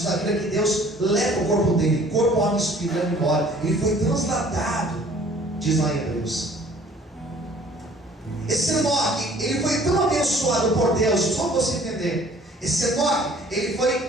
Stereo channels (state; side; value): normal; both; correlation 0.54